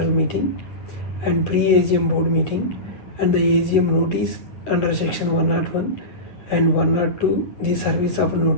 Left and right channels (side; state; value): right; late; 9.9 ms